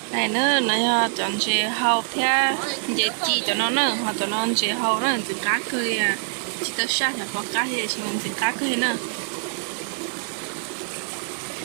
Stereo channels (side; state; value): left; silent; digital silence